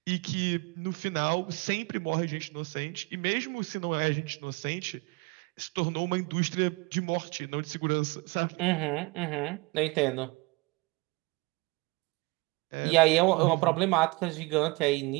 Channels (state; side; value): quieter; left; 25.8 dB